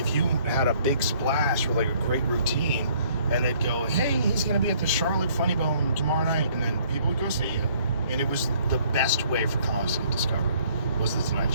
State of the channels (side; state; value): both; inverted; correlation -0.61